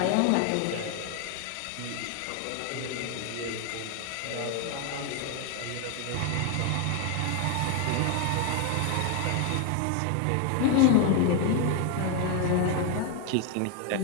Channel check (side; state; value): both; different; correlation 0.01